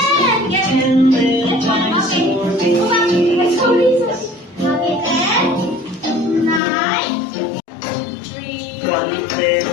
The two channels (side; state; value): right; drops out; at 6.6 s